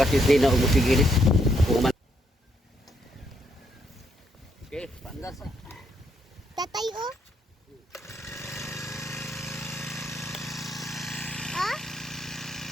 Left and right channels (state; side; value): normal; both; correlation 0.75